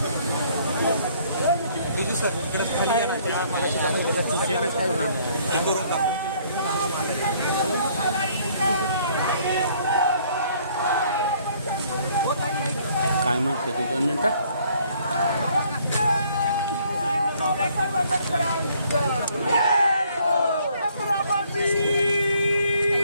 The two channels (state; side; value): inverted; both; correlation -0.62